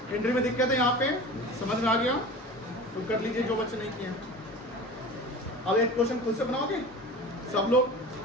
एंट्री में दिक्कत है यहाँ पे, समझ में आ गया तो कर लीजिए जो बच्चे नहीं किए हैं। अब एक क्वेश्चन खुद से बनाओगे सब लोग?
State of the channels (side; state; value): both; normal; correlation 0.35